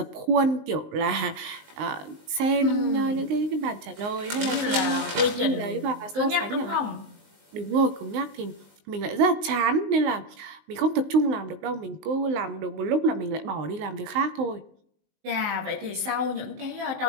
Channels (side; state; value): left; late; 19 ms